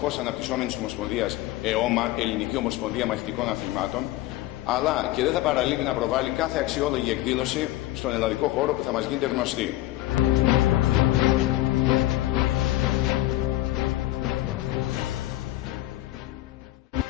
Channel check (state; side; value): quieter; right; 16.3 dB